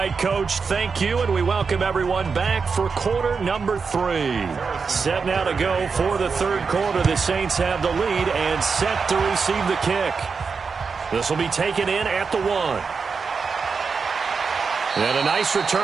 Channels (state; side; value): quieter; left; 5.2 dB